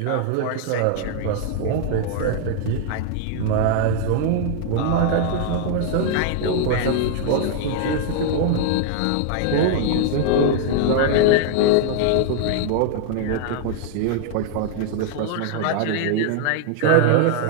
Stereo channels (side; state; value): both; different; correlation 0.00